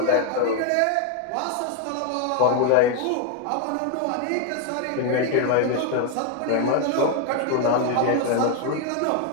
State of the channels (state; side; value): different; both; correlation 0.01